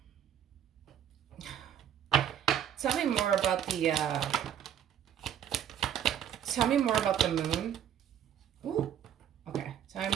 tell me more about the. Tell me more about the moon. Ooh. Okay. Tell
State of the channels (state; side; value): quieter; left; 9.6 dB